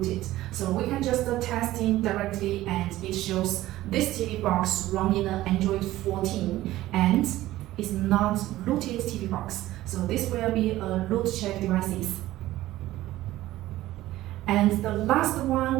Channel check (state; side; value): quieter; left; 15.7 dB